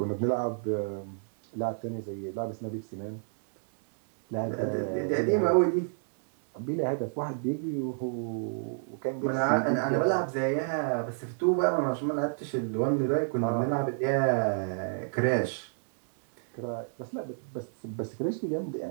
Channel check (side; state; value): left; silent; 58 dB below the other